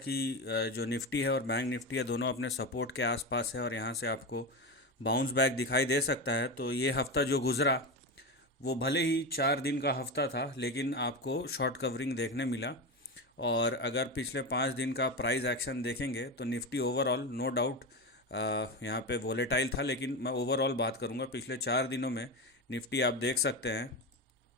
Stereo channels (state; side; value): normal; both; correlation 0.19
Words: जो निफ्टी है और बैंक निफ्टी है दोनों अपने सपोर्ट के आसपास है और यहाँ से आपको बाउंस बैक दिखाई दे सकता है। तो ये हफ्ता जो गुज़रा वो भले ही 4 दिन का हफ्ता था, लेकिन आपको शॉर्ट कवरिंग देखने मिला। और अगर पिछले 5 दिन का प्राइस एक्शन देखेंगे तो निफ्टी ओवरऑल नो डाउट यहाँ पे वोलेटाइल था, लेकिन मैं ओवरऑल बात करूँगा पिछले 4 दिनों में। निफ्टी आप देख सकते हैं